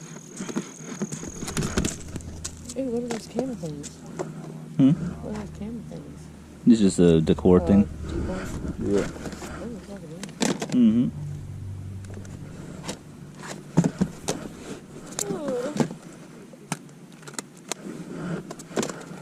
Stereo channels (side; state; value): both; identical; correlation 1.00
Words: Hey, what are those camera things? Hmm? What are those camera things? This is just a decor thing. T-bone? Yeah. Oh, it's not good. Mm-hmm.